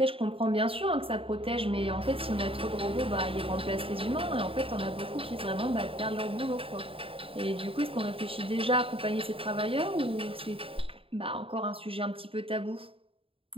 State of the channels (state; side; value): late; left; 0.27 ms